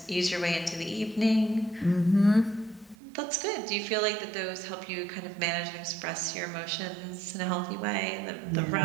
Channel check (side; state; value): left; drops out; at 3.0 s